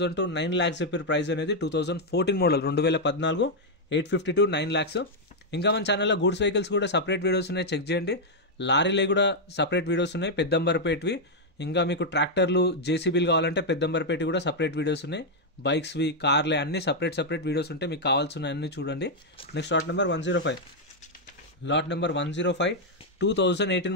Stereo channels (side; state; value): both; normal; correlation -0.01